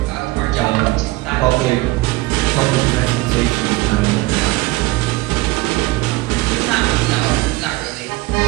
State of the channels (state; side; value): quieter; left; 20.6 dB